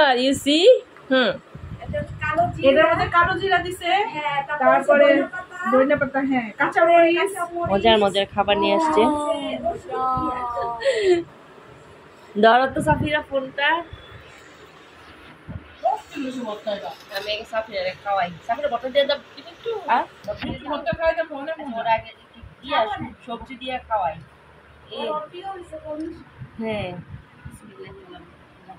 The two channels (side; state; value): both; identical; correlation 1.00